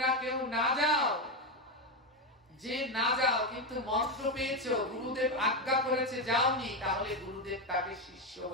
কেউ না যাও, যে না যাও কিন্তু মন্ত্র পেয়েছো, গুরুদেব আজ্ঞা করেছে যাওনি, তাহলে গুরুদেব তাকে শিষ্য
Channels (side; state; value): both; normal; correlation 0.10